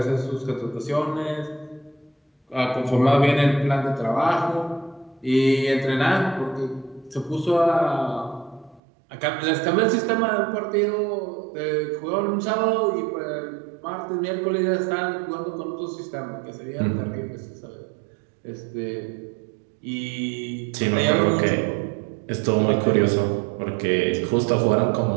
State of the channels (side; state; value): left; drops out; at 8.8 s